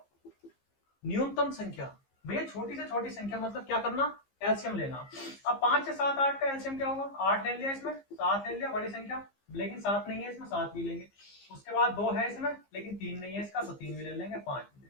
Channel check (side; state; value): right; late; 15 ms